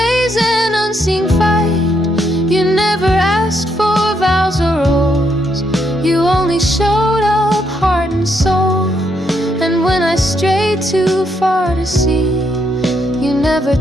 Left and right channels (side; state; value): both; normal; correlation 0.76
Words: far to see. You never